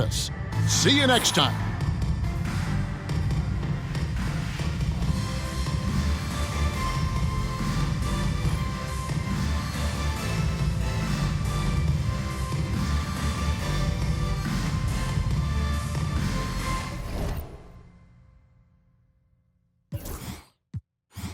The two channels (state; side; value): identical; both; correlation 1.00